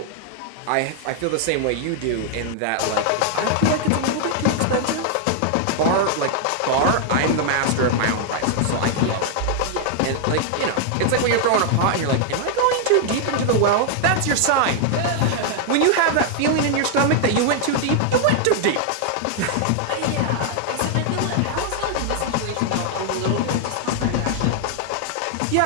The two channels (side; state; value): both; different; correlation 0.00